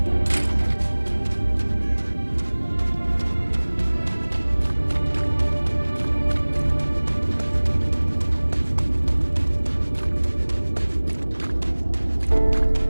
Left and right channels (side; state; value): both; inverted; correlation -1.00